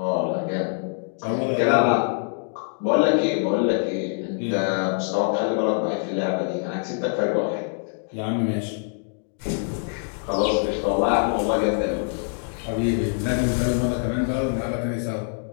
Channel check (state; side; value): silent; right; digital silence